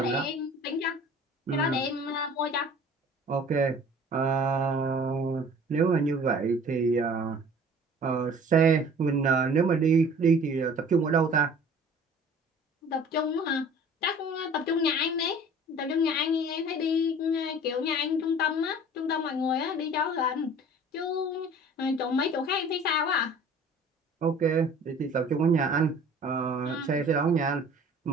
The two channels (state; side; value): normal; both; correlation 0.47